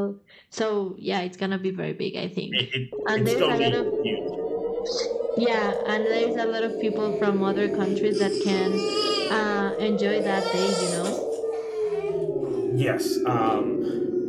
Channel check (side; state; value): both; identical; correlation 1.00